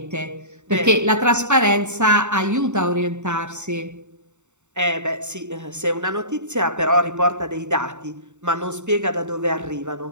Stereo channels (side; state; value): left; late; 0.84 ms